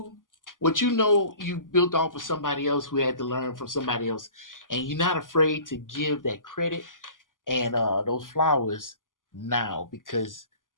What you know, you built off of somebody else who had to learn from somebody else. And you're not afraid to give that credit and those flowers now. Because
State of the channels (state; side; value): late; right; 0.89 ms